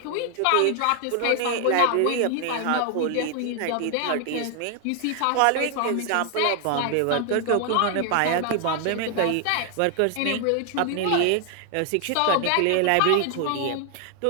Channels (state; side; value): different; both; correlation 0.00